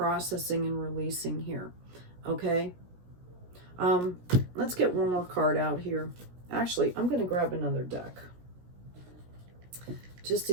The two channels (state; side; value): late; left; 17 ms